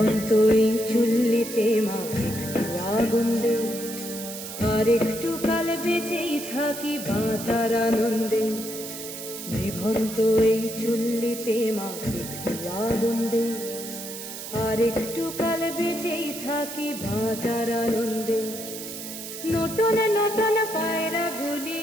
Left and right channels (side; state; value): right; noise; hiss, 9 dB below the sound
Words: এই চুল্লিতে মা একটু আগুন দে, আর একটু কাল বেঁচেই থাকি বাঁচার আনন্দে। নিভন্ত এই চুল্লিতে মা একটু আগুন দে, আর একটু কাল বেঁচেই থাকি বাঁচার আনন্দে। নতুন নতুন পায়রা গুলি